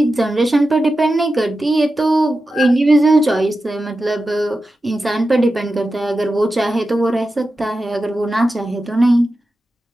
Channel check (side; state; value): both; normal; correlation 0.92